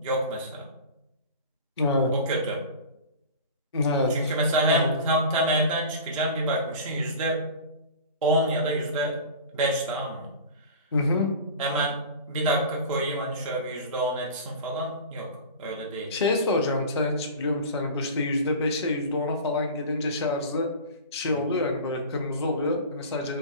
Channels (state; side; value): inverted; both; correlation -0.34